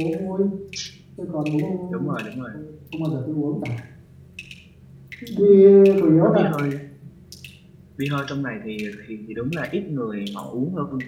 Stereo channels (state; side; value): identical; both; correlation 1.00